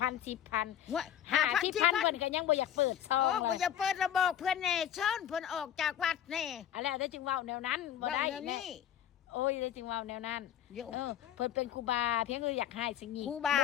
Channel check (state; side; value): quieter; right; 10.3 dB